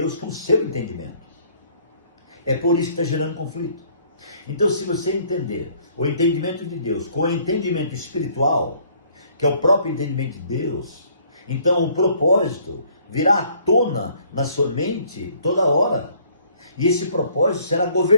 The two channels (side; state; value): both; inverted; correlation -0.61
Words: com o seu entendimento. É por isso que está gerando conflito. Então, se você entender o entendimento de Deus com o entendimento espiritual, que é o próprio entendimento de Deus, então o propósito virá à tona na sua mente toda hora. E esse propósito será